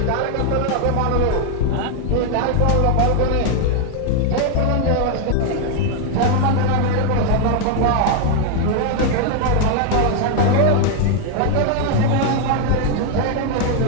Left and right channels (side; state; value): both; different; correlation 0.00